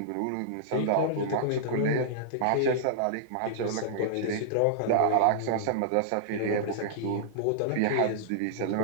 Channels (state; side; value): different; both; correlation -0.02